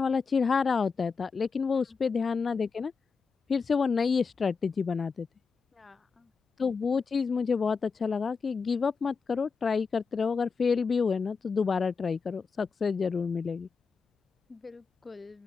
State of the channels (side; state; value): right; quieter; 5.1 dB